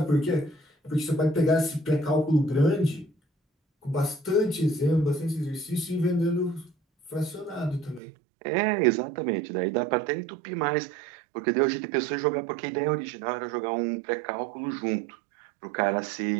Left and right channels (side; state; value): left; drops out; at 8.0 s